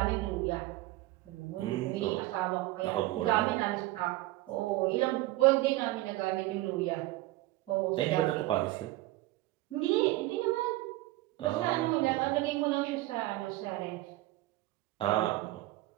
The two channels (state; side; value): quieter; left; 18.2 dB